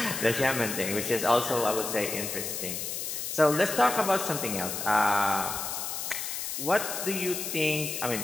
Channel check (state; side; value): noise; left; hiss, 4 dB below the sound